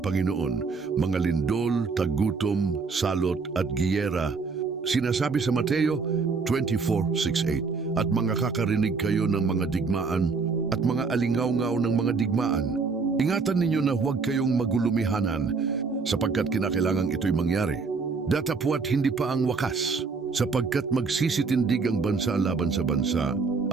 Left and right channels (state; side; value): quieter; left; 4.7 dB